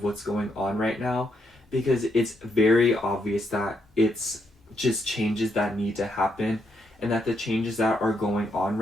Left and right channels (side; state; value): both; normal; correlation 0.78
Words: what's going on right now, because it's very obvious that it's just changes that need to happen, and that the changes that are going on